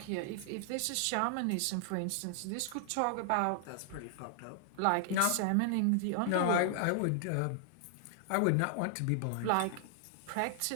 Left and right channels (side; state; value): both; different; correlation -0.01